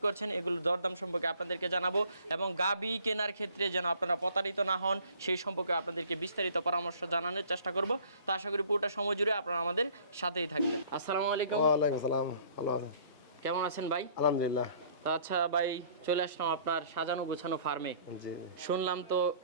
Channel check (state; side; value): inverted; both; correlation -0.55